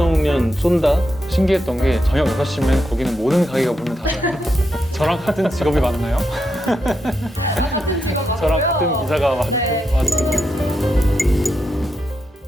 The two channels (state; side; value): normal; both; correlation 0.84